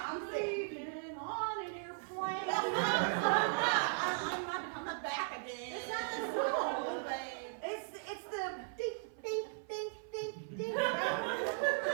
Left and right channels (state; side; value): silent; left; 53 dB below the other